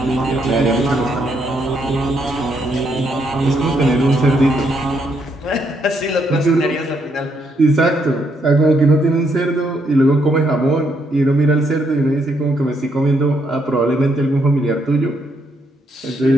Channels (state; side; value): normal; both; correlation 0.75